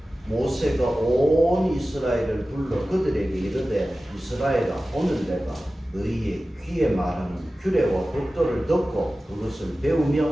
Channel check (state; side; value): normal; both; correlation 0.95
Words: 모세가 온 이스라엘을 불러 그들에게 이르되 이스라엘아 오늘 내가 너희의 귀에 말하는 규례와 법도를 듣고 그것을